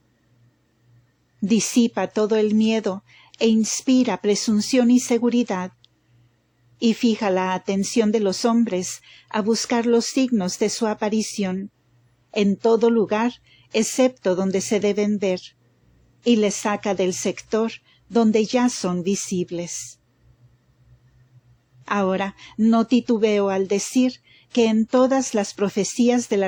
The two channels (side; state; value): both; identical; correlation 1.00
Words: Disipa todo el miedo e inspira presunción y seguridad, y fija la atención de los hombres a buscar los signos de su aparición, en todo lugar excepto donde se deben ver, y les saca del sector donde ya son visibles. Ahora no titubeo al decir que en todas las profecías de la